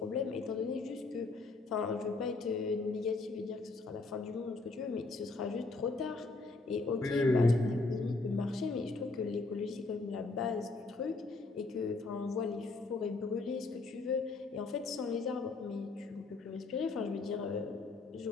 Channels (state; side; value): quieter; right; 3.6 dB